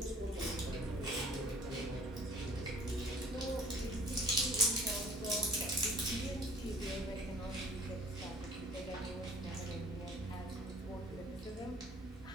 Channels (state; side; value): normal; both; correlation 0.52